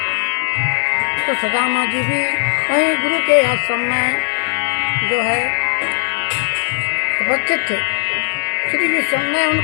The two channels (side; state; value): right; silent; digital silence